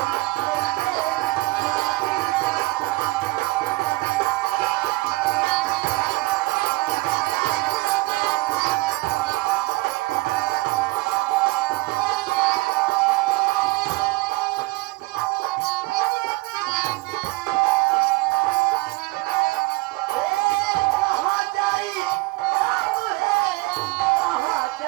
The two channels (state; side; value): quieter; left; 23.0 dB